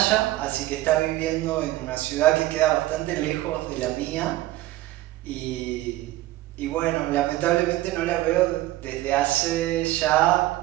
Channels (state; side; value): quieter; left; 16.5 dB